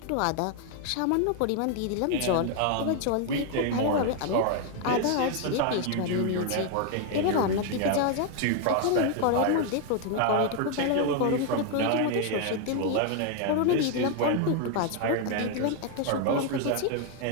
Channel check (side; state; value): both; different; correlation 0.01